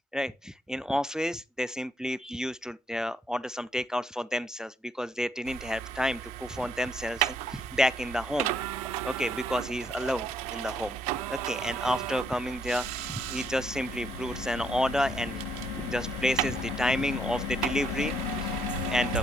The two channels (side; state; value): both; normal; correlation 0.71